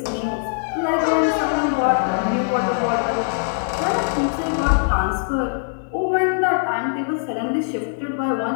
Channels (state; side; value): silent; right; digital silence